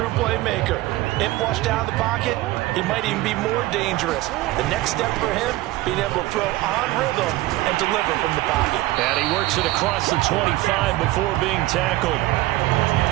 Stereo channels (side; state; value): left; quieter; 18.0 dB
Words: playmaker. If flushed out of the pocket, he might even be more dangerous. The next step for him, being able to throw on rhythm and deliver from the pocket. And he works it across the 25 before being tackled.